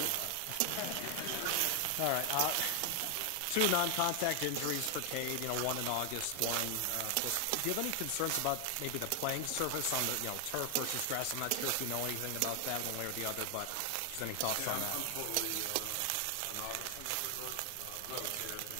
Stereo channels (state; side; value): different; both; correlation 0.00